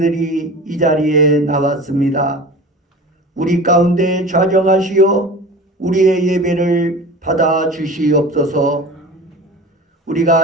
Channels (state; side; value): normal; both; correlation 0.36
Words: 이 자리에 나왔습니다. 우리 가운데 좌정하시어 우리의 예배를 받아 주시옵소서.